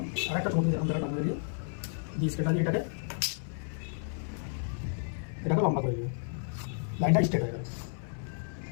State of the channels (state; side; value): silent; right; 56 dB below the other